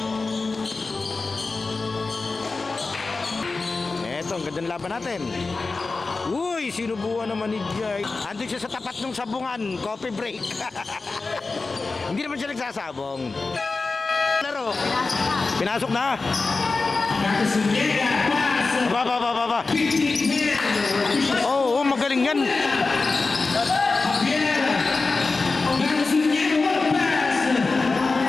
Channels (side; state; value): right; quieter; 3.9 dB